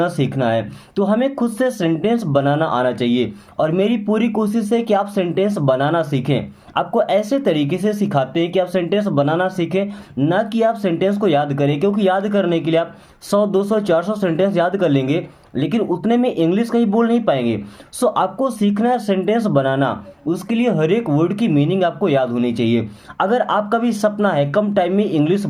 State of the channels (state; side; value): identical; both; correlation 1.00